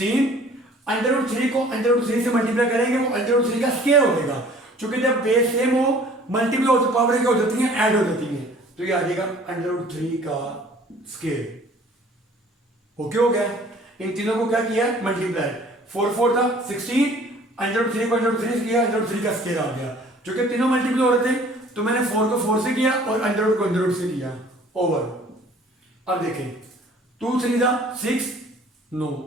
√3 को √3 से मल्टीप्लाई करेंगे वो √3 का स्क्वायर हो जाएगा। क्योंकि जब बेस सेम हो मल्टीप्लाई हो तो पावर क्या हो जाती है ऐड हो जाती है, तो ये आ जाएगा √3 का स्क्वायर। ओके हो गया। इन तीनों को क्या किया मल्टीप्लाई, 4 4 का 16, √3 को √3 से किया, √3 का स्क्वायर आ गया। क्योंकि तीनों मल्टीप्लाई हो रहे थे तो मैंने 4 को 4 से किया और √√ को √√ से किया ओवर। अब देखें 2 3 का 6, नो,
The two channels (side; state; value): both; normal; correlation 0.52